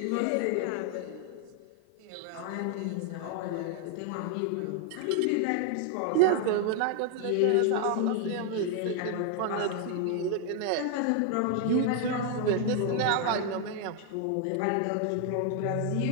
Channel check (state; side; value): different; both; correlation 0.00